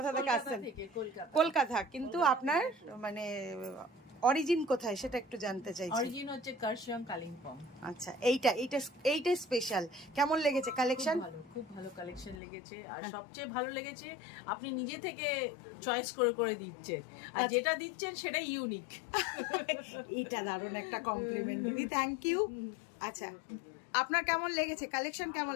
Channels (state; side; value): drops out; right; at 12.4 s